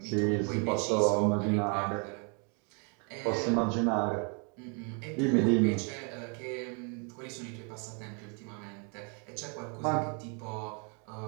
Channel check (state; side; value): quieter; left; 36.7 dB